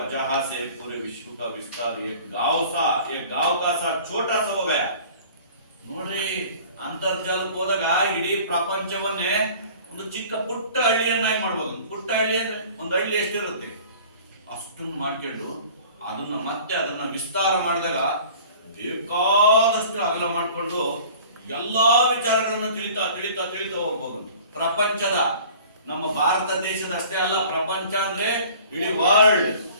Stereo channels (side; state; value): both; inverted; correlation -0.47